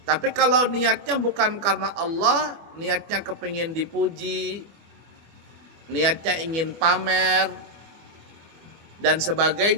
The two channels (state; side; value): late; left; 24 ms